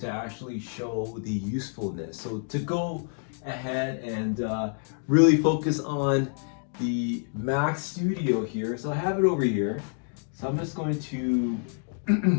actually show the usefulness. So to go ahead and really focus on the Mac Studio here, so I have it over here. So I'm just going to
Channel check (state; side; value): silent; right; 59 dB below the other